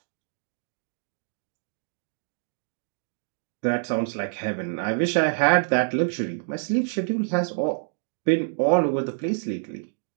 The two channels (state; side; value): silent; left; digital silence